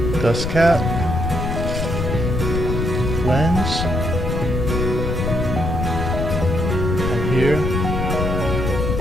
Dust cap. Lens. And here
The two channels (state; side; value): noise; left; rumble, 1 dB below the sound